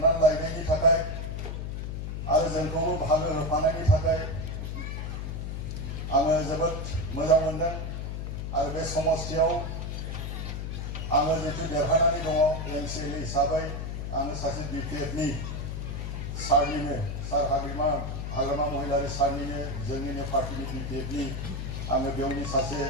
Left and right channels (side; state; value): left; noise; hum, 4 dB below the sound